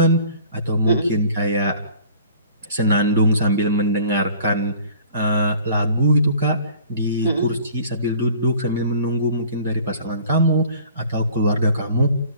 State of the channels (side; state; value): both; inverted; correlation -0.49